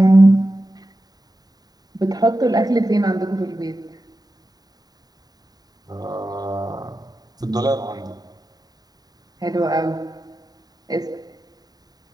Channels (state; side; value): late; left; 0.19 ms